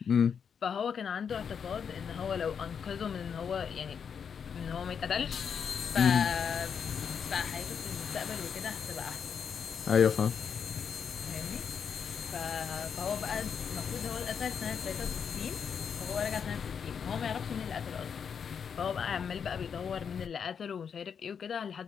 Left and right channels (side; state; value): right; quieter; 7.0 dB